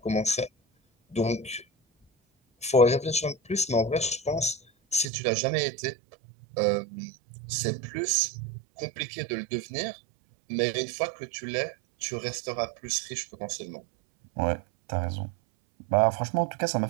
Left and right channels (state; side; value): drops out; left; at 5.1 s